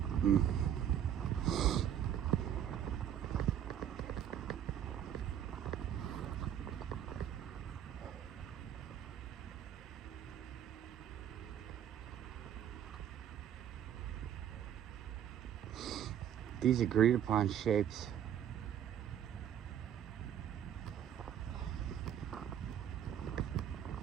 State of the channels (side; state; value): left; quieter; 9.9 dB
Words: These agreed upon shapes.